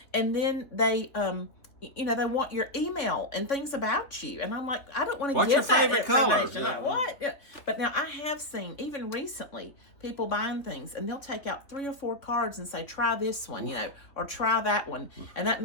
And then they they want your email and things about you. And I'm like, I don't want to What's give your favorite color? information. Like, what? Yeah. But now I have seen, even recently, people buying things, and they'll take out 3 or 4 cards and say, try this one, or try that one. And that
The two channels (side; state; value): right; late; 3.3 ms